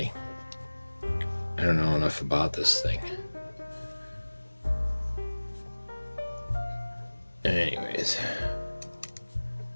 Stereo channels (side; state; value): both; inverted; correlation -1.00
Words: I don't know enough about this thing. Anyways.